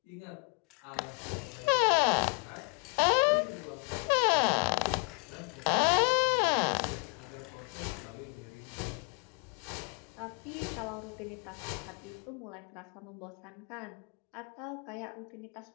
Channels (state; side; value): quieter; right; 39.0 dB